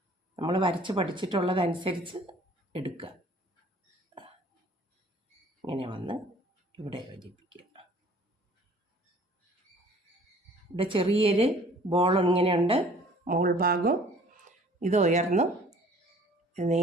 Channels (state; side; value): normal; both; correlation 0.53